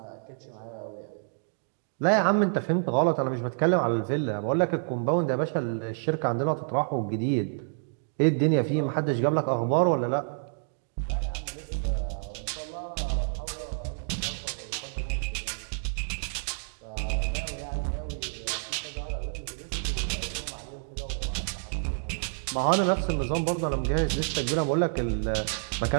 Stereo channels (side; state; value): left; silent; digital silence